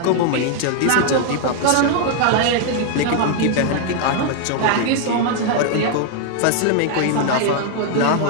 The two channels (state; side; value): different; both; correlation 0.00